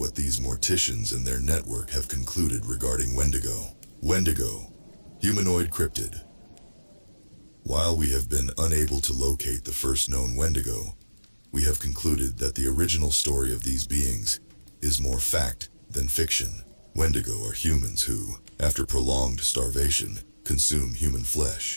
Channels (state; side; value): inverted; both; correlation -1.00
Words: these morticians and their network have concluded regarding Wendigo. Wendigo, humanoid cryptid. While we have been unable to locate the first known Wendigo, we have concluded that the original story of these beings is more fact than fiction. Wendigo are humans who, after prolonged starvation, consume human